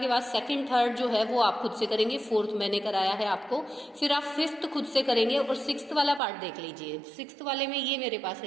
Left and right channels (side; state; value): left; drops out; at 6.2 s